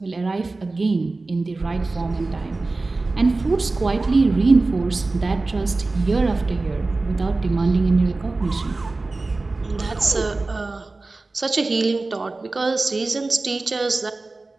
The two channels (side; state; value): left; quieter; 3.4 dB